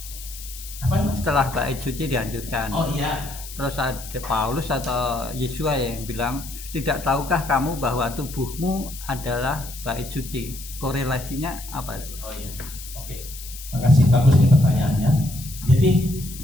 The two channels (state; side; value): noise; left; hiss, 13 dB below the sound